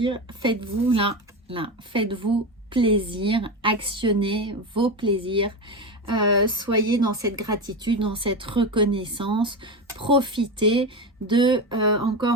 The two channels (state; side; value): normal; both; correlation 0.19